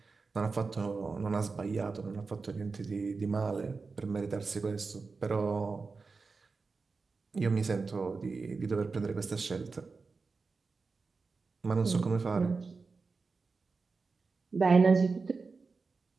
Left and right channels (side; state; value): left; quieter; 4.4 dB